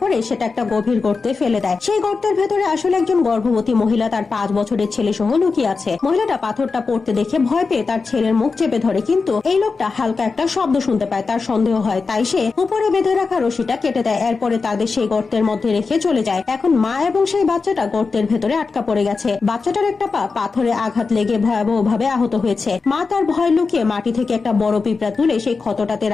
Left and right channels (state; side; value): quieter; right; 4.5 dB